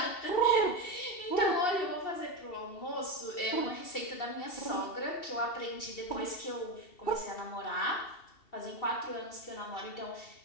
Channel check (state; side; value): late; right; 2.7 ms